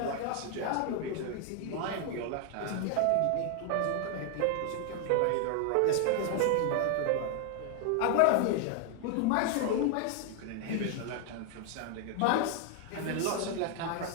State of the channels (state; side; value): different; both; correlation 0.00